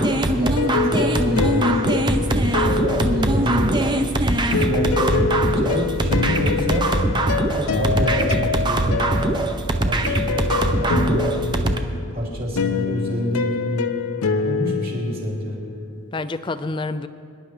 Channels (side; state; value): both; normal; correlation 0.46